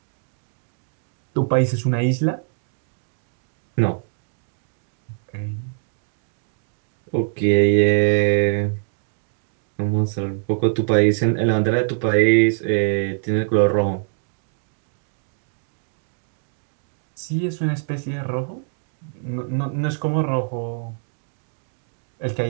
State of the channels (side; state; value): left; silent; digital silence